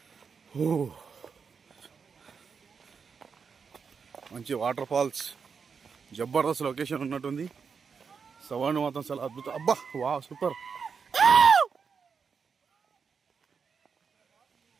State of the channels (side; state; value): left; quieter; 5.9 dB